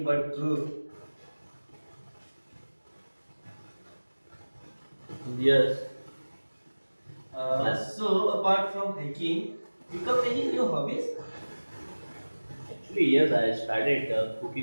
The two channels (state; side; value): inverted; both; correlation -1.00